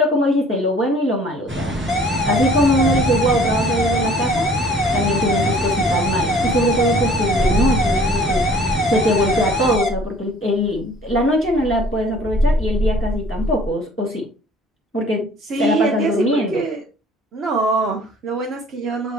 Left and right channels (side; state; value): both; normal; correlation 0.53